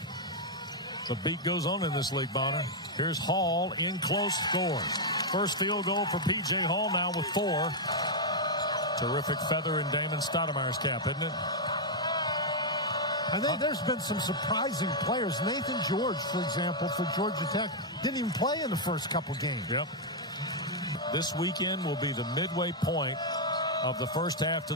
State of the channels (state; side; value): normal; both; correlation -0.03